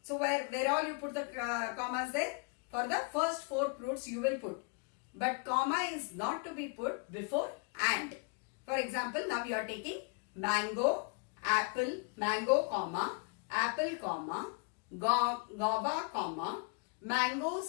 So where all you put the commas there? For the first 4 fruits you will put. But comma is not to be put before and. For example, now you are taking mango, apple, mango, comma, apple, comma, guava, comma, mangoes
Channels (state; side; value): quieter; right; 34.9 dB